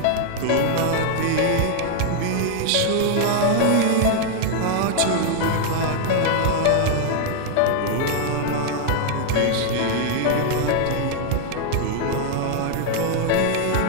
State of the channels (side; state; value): both; different; correlation 0.00